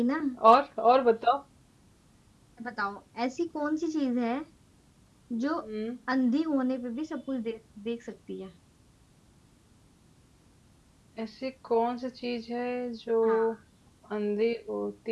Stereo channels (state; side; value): identical; both; correlation 1.00